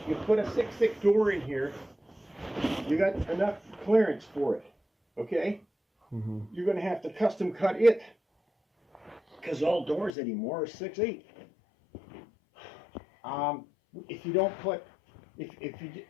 you put a 6.6 door in here, you got enough clearance for it, okay? Mhm. You're going to have to custom cut it, because all doors anymore are 6.8. If you don't put,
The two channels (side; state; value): right; drops out; at 10.2 s